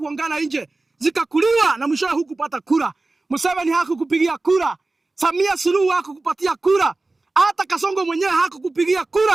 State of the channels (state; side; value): quieter; left; 3.2 dB